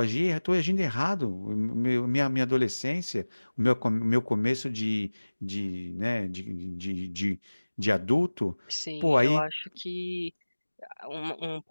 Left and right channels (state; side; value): inverted; both; correlation -1.00